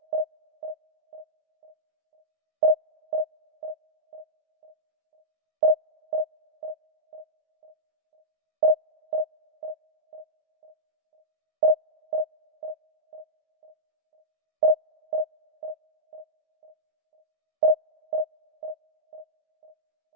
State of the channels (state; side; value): late; left; 19 ms